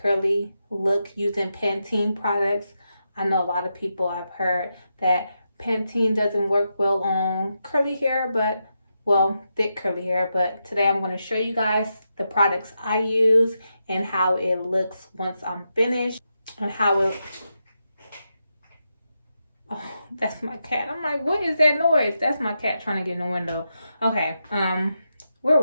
look using Pantene products. I know a lot of people have heard that Pantene doesn't work well on curly hair, but well, thick curly hair. But today I'm going to show you guys the products I use and how it looks once I'm finished, and how it, oh, that's my cat. I'm like, what is that noise? That's my cat trying to get in the window. Okay, where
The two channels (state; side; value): inverted; both; correlation -0.86